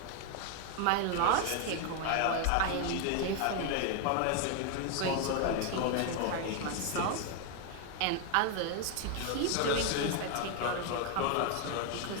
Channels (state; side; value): different; both; correlation 0.01